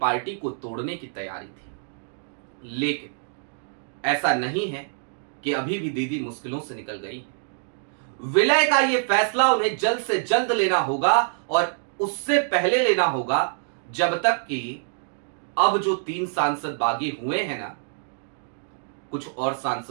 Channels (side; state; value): left; silent; digital silence